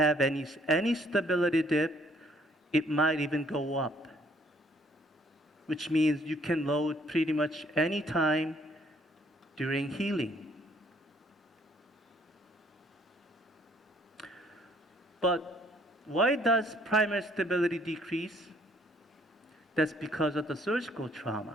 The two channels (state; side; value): normal; both; correlation 0.63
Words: any stability dip. It might even go up, which means you can load pretty much any time during healing. But why does primary stability decrease? That's because of the surgical